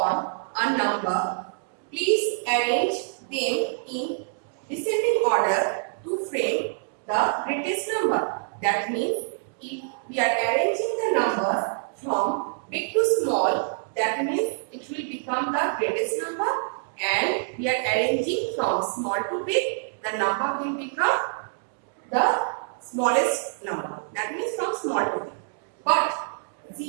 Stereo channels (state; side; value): silent; left; digital silence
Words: a number, please arrange them in descending order to frame the greatest number. That means if we are arranging the numbers from big to small, that means it will become the greatest number, and we are arranging from small to big, the number will become the smallest number. That means from small to big. But